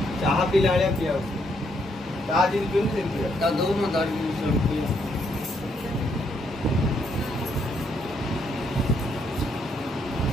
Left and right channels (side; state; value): both; normal; correlation 0.74